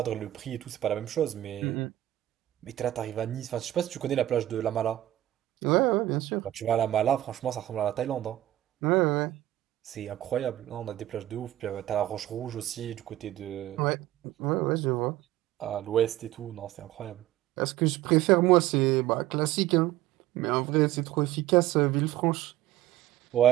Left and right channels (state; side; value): quieter; left; 14.2 dB